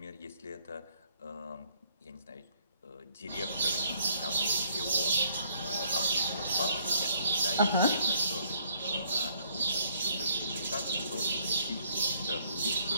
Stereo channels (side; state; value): both; inverted; correlation -0.66